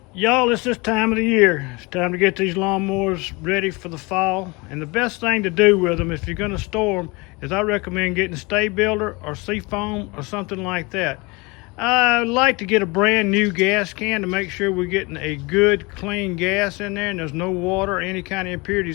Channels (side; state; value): right; quieter; 26.0 dB